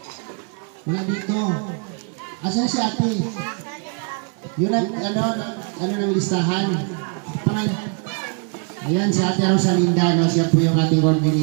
Wala dito. Asan si Ate? Yun ang, ano ng listahan? Ayan, si Ate Rosalinda, no? Siya po yung ating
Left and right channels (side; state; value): left; quieter; 38.2 dB